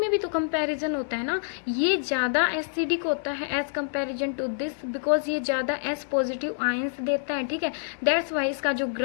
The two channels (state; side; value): silent; right; digital silence